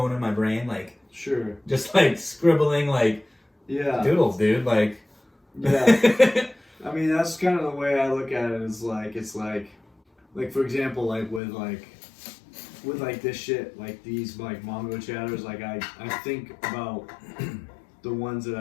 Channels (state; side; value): drops out; right; at 11.4 s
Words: in my brain, like sure, just like scribbling, like doodles, dude, like I mean, that's kind of the way I look at it, is like, it's like for example, like with this shit, like these like Mongochatters, like I think about the ones that